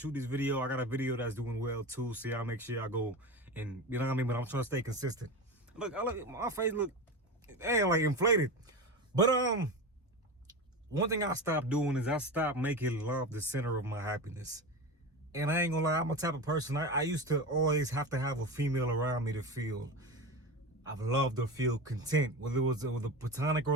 this video. I got a video that's doing well too. So I'll make sure I go and you know what I mean. But I'm trying to stay consistent. Look, my face look like inflated. But one thing I stopped doing is I stopped making love the center of my happiness. And I ain't gonna lie, I'm a type of person, I used to always have to have a female around me to feel I've loved or feel content. Whether it was a platonic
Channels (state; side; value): normal; both; correlation 0.24